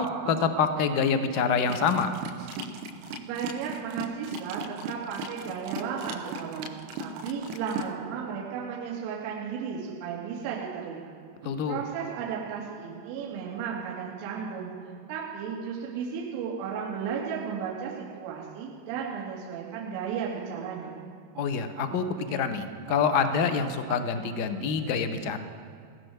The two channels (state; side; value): late; left; 32 ms